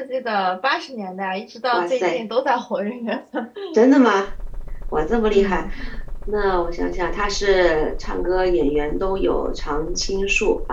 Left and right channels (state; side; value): identical; both; correlation 1.00